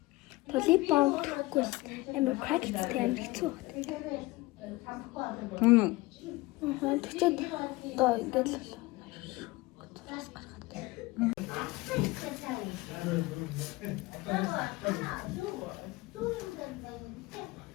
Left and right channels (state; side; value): quieter; right; 20.9 dB